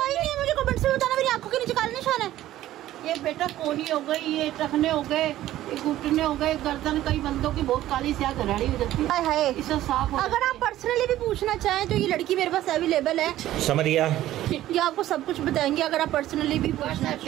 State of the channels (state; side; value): quieter; left; 14.1 dB